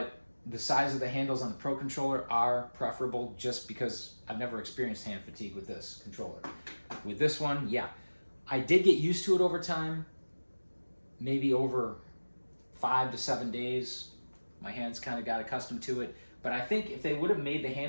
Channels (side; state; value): both; inverted; correlation -1.00